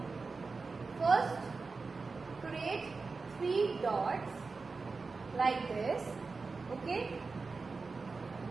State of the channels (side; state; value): left; quieter; 4.2 dB